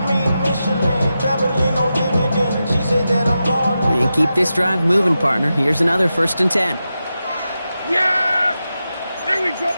And keep this drive moving, partner. Here's another 1st and 10. Yeah! Here we go,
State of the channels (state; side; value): inverted; both; correlation -0.90